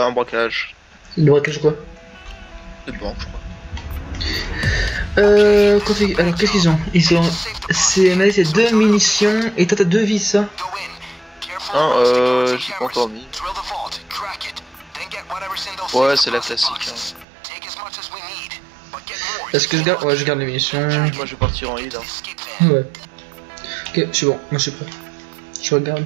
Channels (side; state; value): left; drops out; at 17.2 s